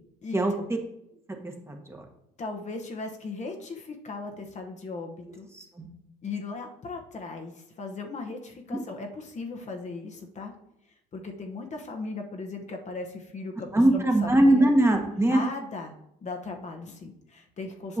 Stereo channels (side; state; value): both; normal; correlation 0.85